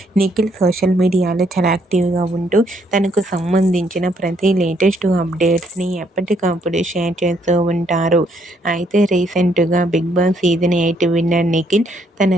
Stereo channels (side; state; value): both; normal; correlation 0.71